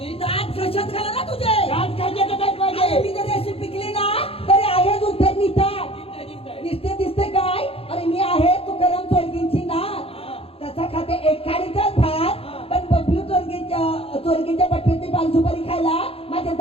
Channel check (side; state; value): right; late; 0.27 ms